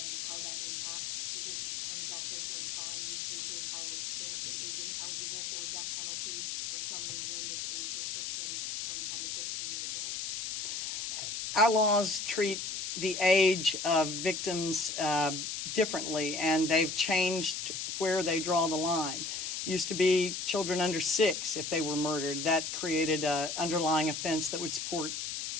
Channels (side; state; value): left; noise; hiss, 3 dB below the sound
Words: how that impacts the district attorney's office when trying these cases, how there isn't eligible for a death penalty for some reason, this age restriction from 10 to 15 years old? Our laws treat the age of victims differently, and they've changed where they draw the line. Used to be children under 6 if they were murdered. That created an underlying offense that would support